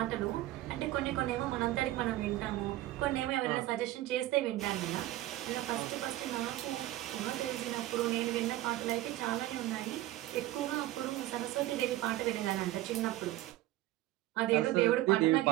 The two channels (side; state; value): left; quieter; 15.8 dB